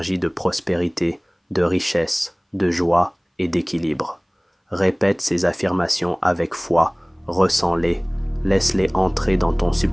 de prospérité, de richesse, de joie et d'équilibre. Répète ces affirmations avec foi, ressens-les, laisse-les entrer dans ton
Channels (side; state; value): both; identical; correlation 1.00